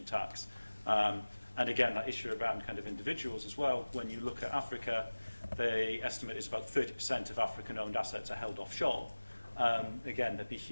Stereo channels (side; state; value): both; inverted; correlation -1.00